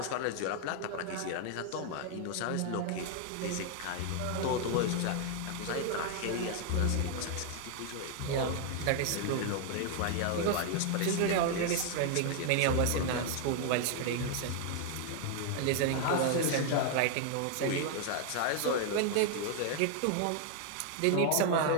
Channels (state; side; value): different; both; correlation 0.00